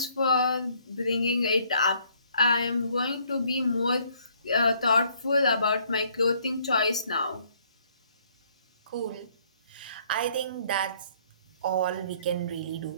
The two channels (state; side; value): inverted; both; correlation -0.64